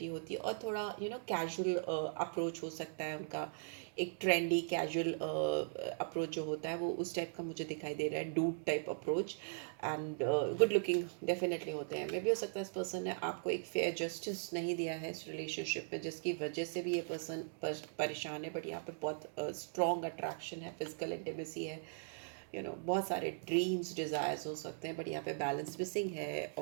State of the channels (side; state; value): left; silent; digital silence